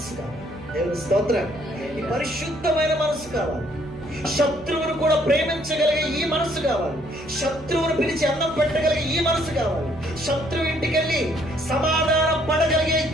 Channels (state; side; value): noise; right; hum, 20 dB below the sound